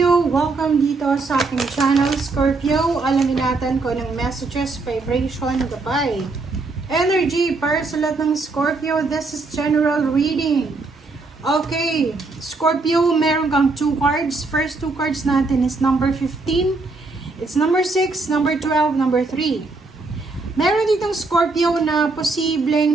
Welcome dito sa aking channel Scorpio. Alamin natin kung anong messages, vibration, gabay, energy para sa lahat ng Scorpio. This is general reading. Okay, Scorpio, meron kang 2 cards. First 2 cards natin is number 15. It's number 6, number 12, number 3. Meron ditong Scorpio na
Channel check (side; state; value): left; quieter; 3.6 dB